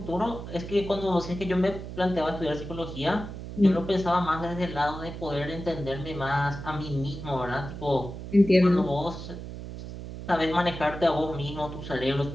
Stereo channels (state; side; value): noise; right; hum, 10 dB below the sound